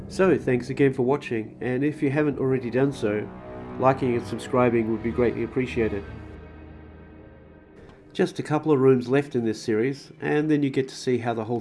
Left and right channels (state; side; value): identical; both; correlation 1.00